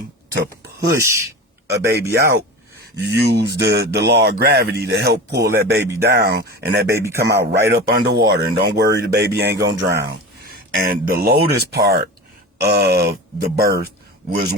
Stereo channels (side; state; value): both; normal; correlation 0.30